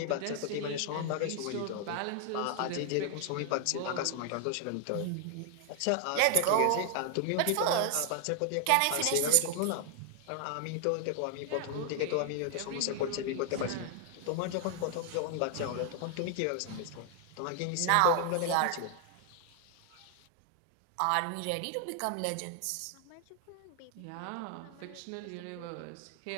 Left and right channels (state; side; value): different; both; correlation 0.00